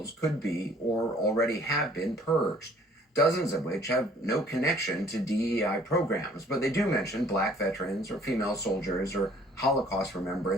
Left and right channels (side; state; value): both; normal; correlation 0.57